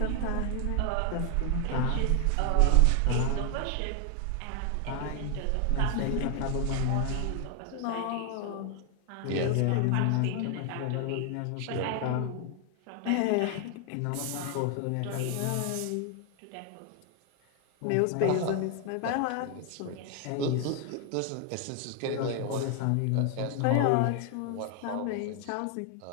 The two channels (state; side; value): different; both; correlation 0.00